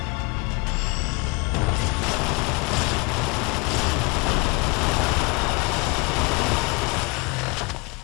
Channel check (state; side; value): quieter; right; 28.1 dB